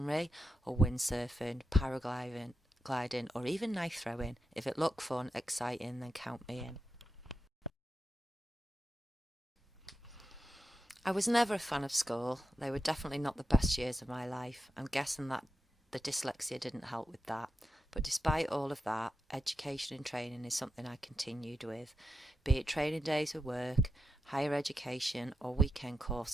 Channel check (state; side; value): normal; both; correlation 0.88